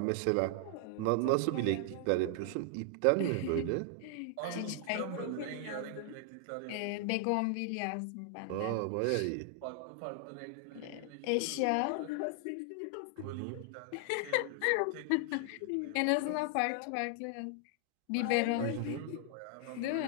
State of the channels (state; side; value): different; both; correlation 0.00